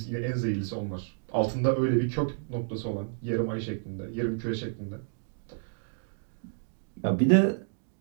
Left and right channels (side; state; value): left; silent; digital silence